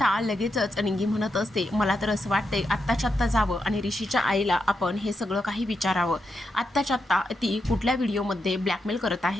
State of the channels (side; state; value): both; normal; correlation 0.84